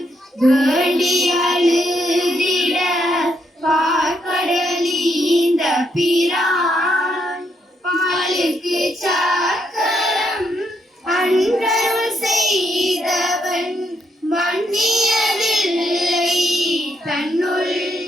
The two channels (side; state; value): both; normal; correlation 0.76